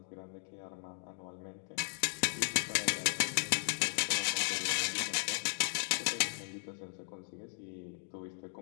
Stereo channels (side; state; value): right; silent; digital silence